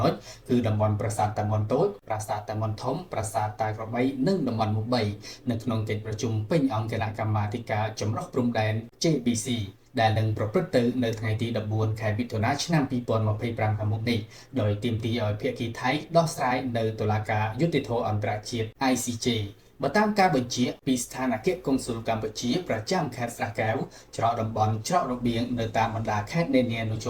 ណុចគឺតំបន់ប្រាសាទតាមុនតូចប្រាសាទតាមុនធំប្រាសាទតាក្របីនិងតំបន់មុខ3នៅក្នុងកិច្ចប្រជុំពេញអង្គគណៈកម្មាធិការចម្រុះព្រំដែន JBC ដែលនឹងប្រព្រឹត្តទៅនៅថ្ងៃទី14ខែមិថុនាឆ្នាំ2025ខាងមុខនេះដោយទាមទារឲ្យភាគីថៃដោះស្រាយនៅតុលាការយុត្តិធម៌អន្តរជាតិ ICJ បើតាមការបញ្ជាពីស្ថានអគ្គកុងស៊ុលកម្ពុជាប្រចាំខេត្តស្រះកែវច្រកតំបន់ច្រករបៀងនៅតាមបណ្ដាខេត្តនានានៅជ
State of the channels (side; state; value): both; identical; correlation 1.00